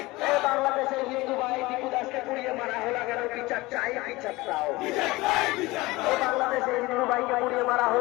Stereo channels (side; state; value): right; quieter; 20.9 dB